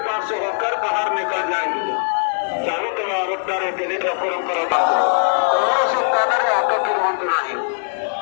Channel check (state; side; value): silent; right; 55 dB below the other